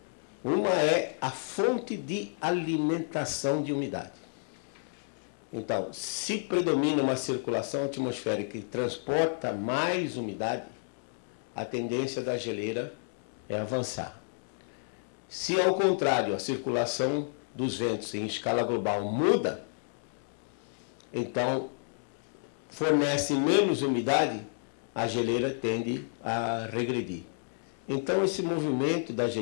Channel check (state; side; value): silent; right; digital silence